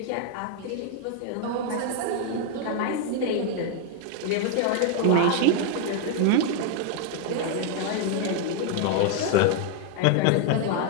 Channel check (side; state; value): both; different; correlation 0.00